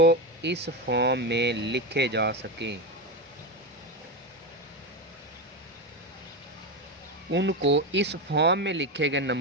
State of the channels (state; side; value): normal; both; correlation 0.15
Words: इस फॉर्म में लिखे जा सकें उनको, इस फॉर्म में लिखे गए